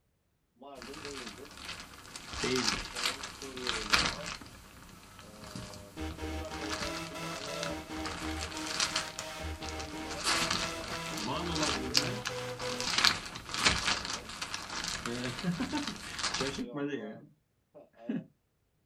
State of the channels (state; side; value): identical; both; correlation 1.00